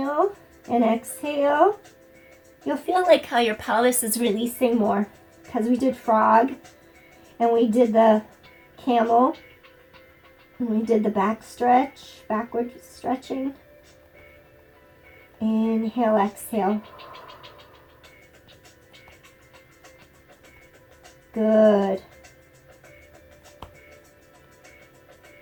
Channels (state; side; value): identical; both; correlation 1.00